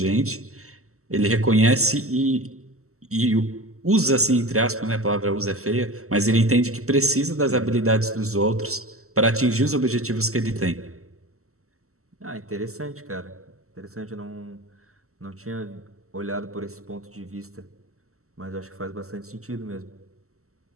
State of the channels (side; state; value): left; late; 0.63 ms